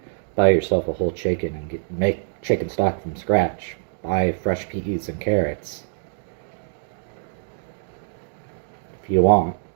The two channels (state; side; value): silent; left; digital silence